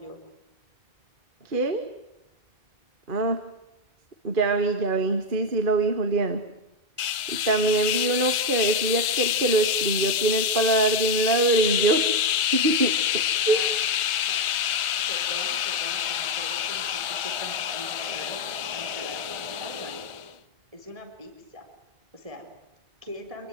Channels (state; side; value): late; left; 1.5 ms